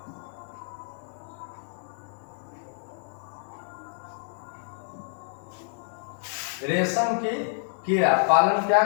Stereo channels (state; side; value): silent; right; digital silence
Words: रेशम की कीड़ा पालन क्या